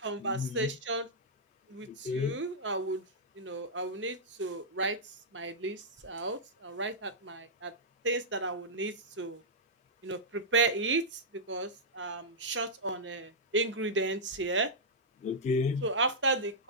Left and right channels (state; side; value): normal; both; correlation -0.11